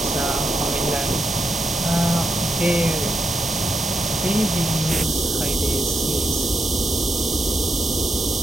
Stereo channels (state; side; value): normal; both; correlation 0.82